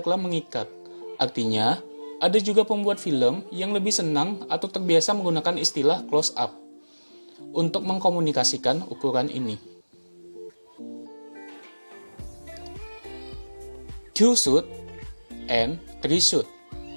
mengikat. Artinya, ada juga pembuat film yang lebih senang atau terbiasa menggunakan istilah close up. untuk mengkomunikasikan ukuran ini. Two shoot and three shoot.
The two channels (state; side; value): inverted; both; correlation -1.00